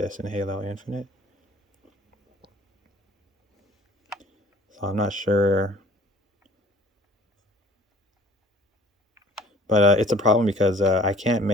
in Halo Infinite. So I'm not sure. But it's a problem because I can't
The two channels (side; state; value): both; normal; correlation 0.51